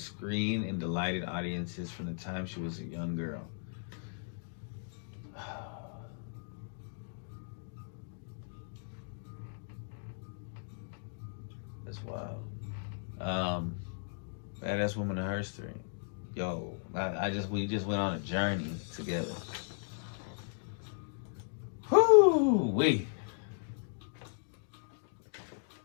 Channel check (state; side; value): silent; right; digital silence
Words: screen and delighted audiences from the time she was a young girl. That's wild. Badass Woman of History. Yo, we just went on a journey together. Whoo-wee.